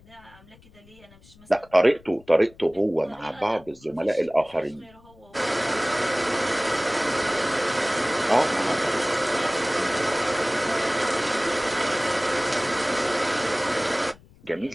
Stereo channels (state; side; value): noise; left; rumble, 26 dB below the sound